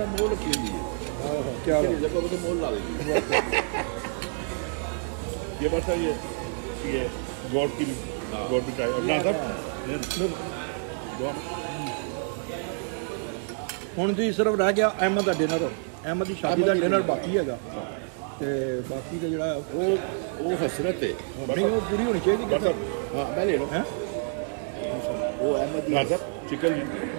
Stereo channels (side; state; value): left; silent; 60 dB below the other